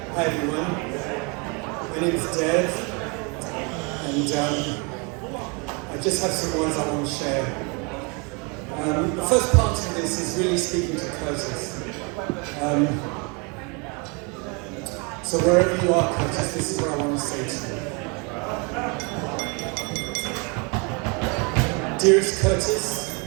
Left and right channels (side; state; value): left; quieter; 31.8 dB